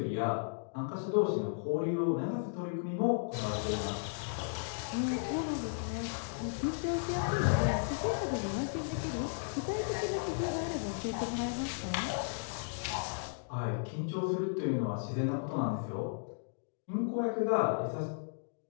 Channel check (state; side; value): silent; right; digital silence